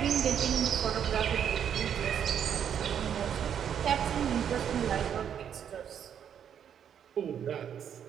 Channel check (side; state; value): left; quieter; 8.7 dB